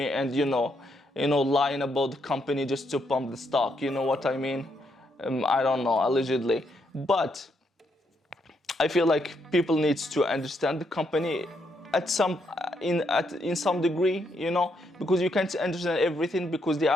and lying about the company just to pump the stock. You know what I mean? I don't know, allegedly. But I feel like people need to understand the company in some degree, because you can't understand everything because they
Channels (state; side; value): normal; both; correlation 0.77